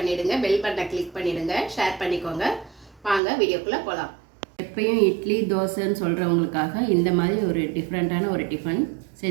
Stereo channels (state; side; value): drops out; left; at 3.2 s